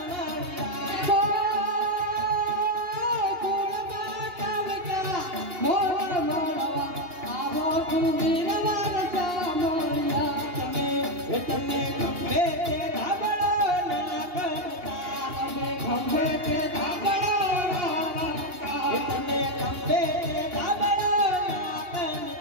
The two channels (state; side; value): late; left; 2.8 ms